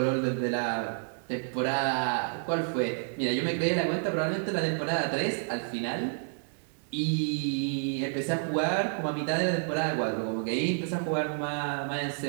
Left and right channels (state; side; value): silent; left; 58 dB below the other